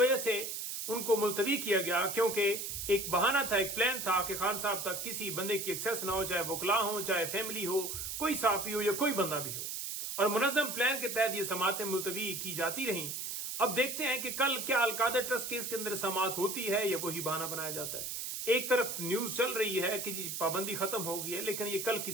से उनको मुलतवी किया गया क्योंकि एक बहाना था, एक प्लान था कि खान साहब तक किसी बंदे की एक्सेस ना हो, चाहे वकला हो, चाहे फैमिली हो, कोई साफी हो या कोई बंदा भी हो। और मुनज़्ज़म प्लान के तहत ये समातें मुलतवी की जाती रहीं। अब देखते हैं कि कल क्या अलकादर ट्रस्ट केस के अंदर समात होती है या वही बहाना बनाया जाता है। एक तरफ न्यूज चल रही है कि जी पाबंदी खत्म हो गई है, लेकिन ये कल की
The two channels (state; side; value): noise; right; hiss, 5 dB below the sound